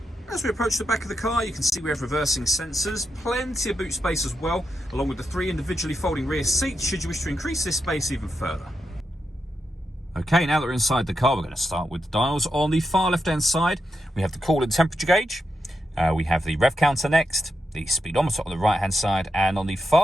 As we approach the back of the car, you can see we have reversing sensors, plenty of boot space as well, along with the 3 individually folding rear seats should you wish to increase this space even further. Okay, now that we're inside the car, we're going to start with the dials. On the far left-hand side, we have the coolant temperature gauge. We have the rev counter next, the speedometer on the right-hand side, and on the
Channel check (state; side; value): normal; both; correlation 0.85